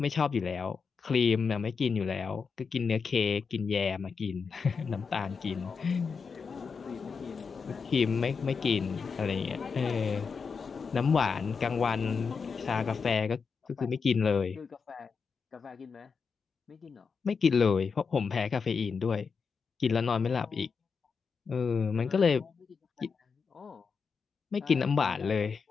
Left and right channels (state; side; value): quieter; right; 5.5 dB